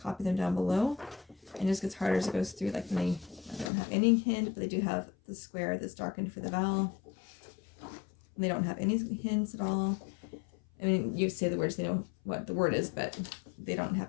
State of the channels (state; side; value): drops out; right; at 3.7 s